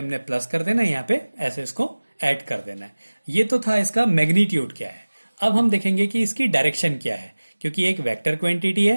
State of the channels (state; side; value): inverted; both; correlation -1.00